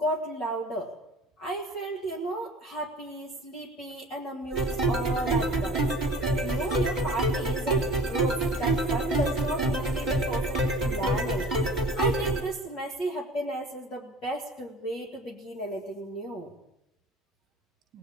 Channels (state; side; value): normal; both; correlation 0.43